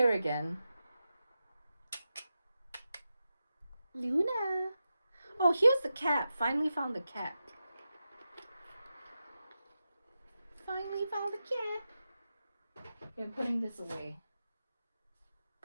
again. Luna. Oh, here's the cat. Finally found the cat. Finally found the cat. Okay, I'm putting this away.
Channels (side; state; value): both; inverted; correlation -0.91